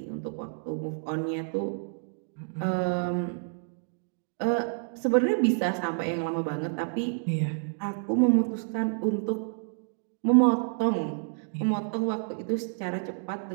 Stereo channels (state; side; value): silent; left; digital silence